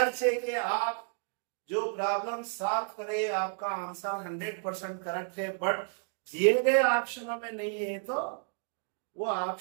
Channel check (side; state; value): left; silent; 57 dB below the other